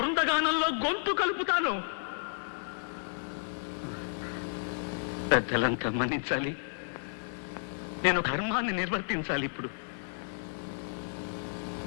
గొంతు కలుపుతాను. పెద్దలంతా మన్నించాలి. నేను ధర్మాన్ని నిర్వర్తించాలి. ఇప్పుడు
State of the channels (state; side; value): silent; right; digital silence